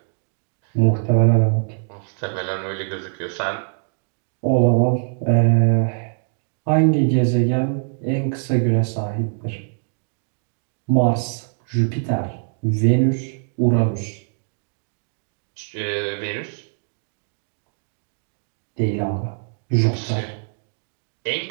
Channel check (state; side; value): silent; left; digital silence